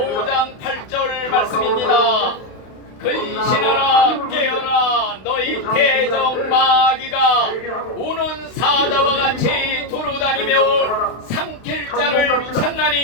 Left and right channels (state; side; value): late; right; 32 ms